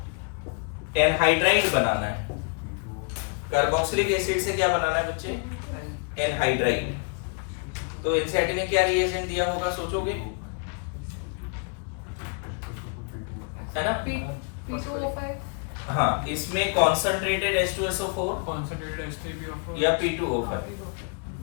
एनहाइड्राइड बनाना है, कार्बोक्सिलिक एसिड से क्या बनाना है बच्चे? एनहाइड्राइड। तो एनसीईआरटी ने क्या रिएजेंट दिया होगा, सोचोगे? है ना? P2O5 हाँ, इसमें कॉन्सेंट्रेटेड H2SO4 concentrated H3PO4 या P2O5।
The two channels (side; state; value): right; quieter; 39.7 dB